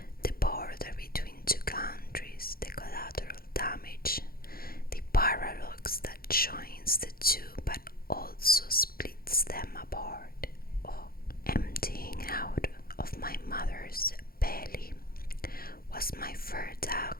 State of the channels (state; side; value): late; right; 0.43 ms